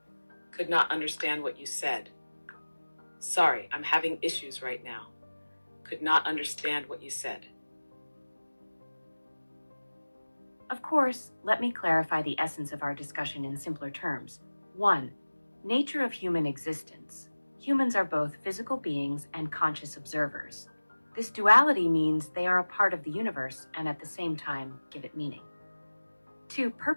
Could not understand what you said. Sorry, I'm having issues right now. Could not understand what you said. Of course, let me clarify the essence of our discussion in simpler terms. 1. Nature of human existence. Humans are both physical beings and conscious observers. This duality means they are a part of the universe and at the same time give it meaning. 2.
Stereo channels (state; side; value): inverted; both; correlation -1.00